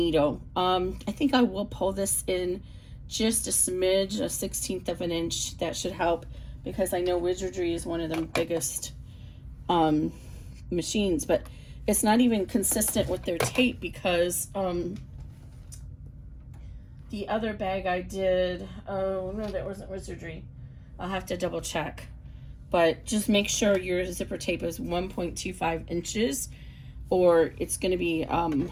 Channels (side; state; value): both; identical; correlation 1.00